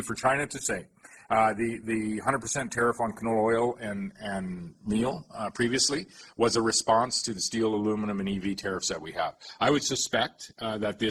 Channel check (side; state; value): both; identical; correlation 1.00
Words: for China to say. The 100% tariff on canola oil and meal previously was a response to the steel, aluminum, and EV tariffs that we have. I would suspect that